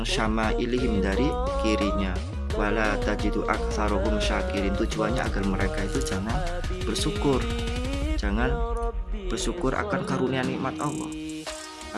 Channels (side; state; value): both; identical; correlation 1.00